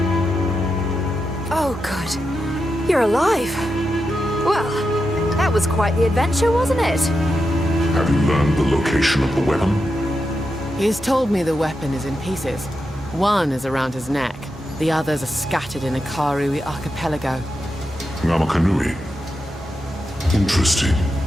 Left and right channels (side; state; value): both; normal; correlation 0.87